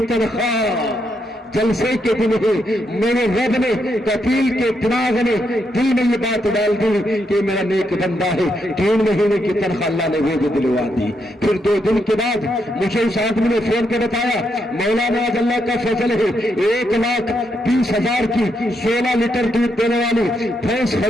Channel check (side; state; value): both; normal; correlation 0.79